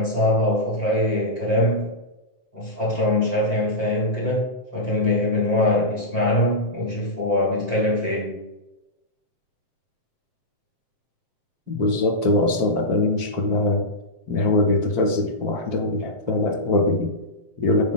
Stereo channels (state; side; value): late; left; 7.6 ms